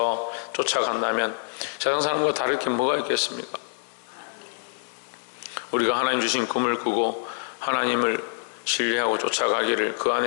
쫓아간다면 세상 사람과 다를 게 뭐가 있겠습니까? 우리가 하나님 주신 꿈을 꾸고 하나님을 신뢰하고 쫓아가기를, 그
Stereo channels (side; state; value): right; silent; digital silence